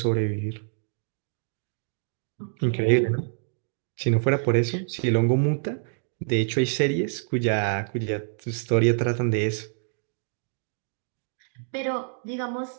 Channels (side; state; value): left; silent; digital silence